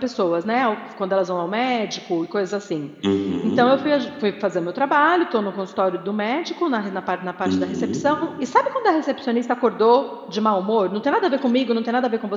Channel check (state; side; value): identical; both; correlation 1.00